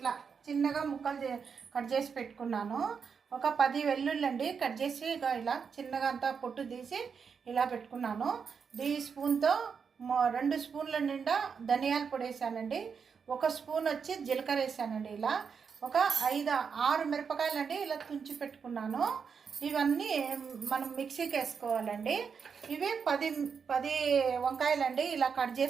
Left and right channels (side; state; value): left; quieter; 6.2 dB